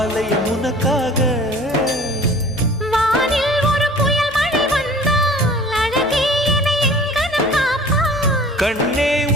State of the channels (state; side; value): noise; left; hum, 20 dB below the sound